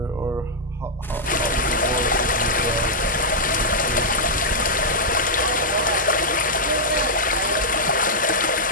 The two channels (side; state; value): both; normal; correlation -0.06